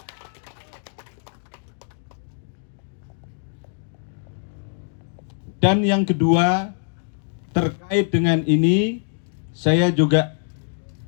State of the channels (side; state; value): right; silent; digital silence